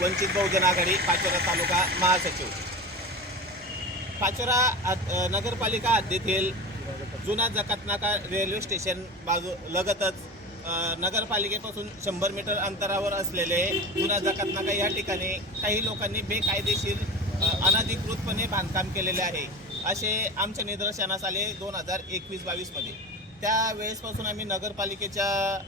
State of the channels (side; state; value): both; normal; correlation 0.29